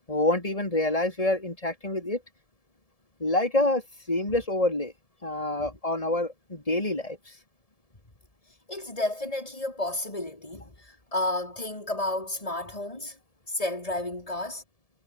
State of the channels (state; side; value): late; right; 1.7 ms